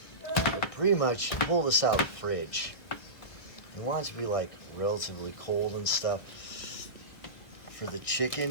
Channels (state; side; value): late; right; 1.4 ms